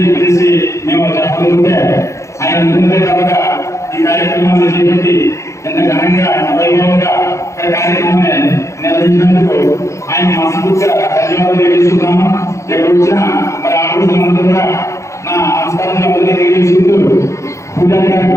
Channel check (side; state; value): right; late; 0.14 ms